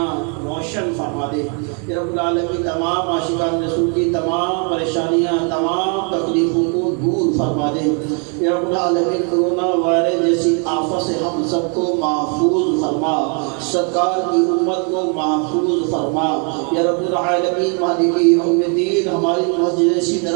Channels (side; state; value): left; quieter; 38.9 dB